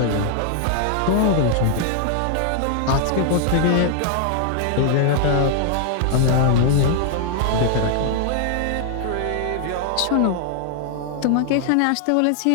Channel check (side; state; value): both; different; correlation 0.00